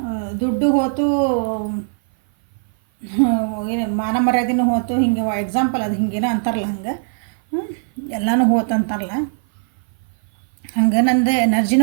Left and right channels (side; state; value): left; silent; 57 dB below the other